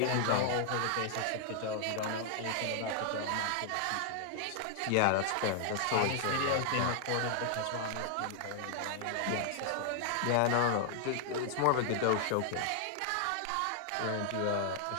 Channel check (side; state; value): both; different; correlation 0.00